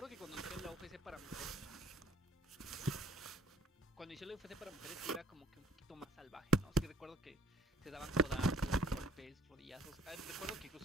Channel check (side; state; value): both; normal; correlation 0.58